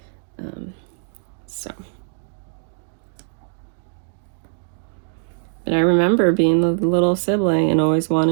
So, but I remember being the little sibling and always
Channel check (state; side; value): silent; left; digital silence